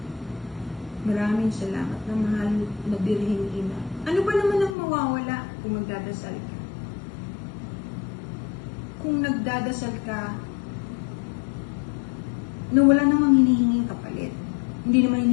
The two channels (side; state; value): right; drops out; at 4.8 s